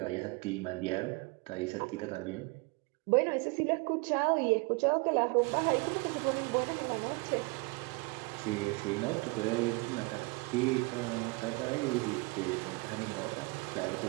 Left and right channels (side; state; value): left; quieter; 27.7 dB